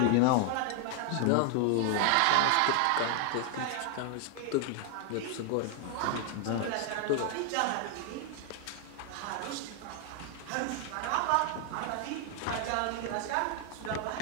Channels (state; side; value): different; both; correlation 0.00